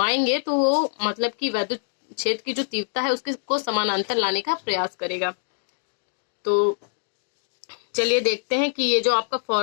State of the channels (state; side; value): silent; right; digital silence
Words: तो वो मतलब कि वैद्युत क्षेत्र की जो तीव्रता है उसके को समानांतर लाने का प्रयास करेगा। तो चलिए देखते हैं कि ये जो आपका